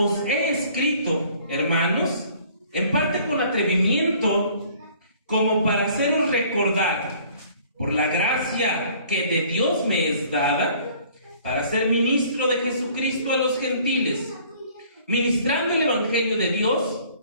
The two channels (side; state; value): both; inverted; correlation -0.55